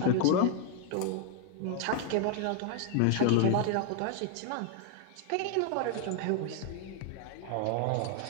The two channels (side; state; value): both; different; correlation 0.00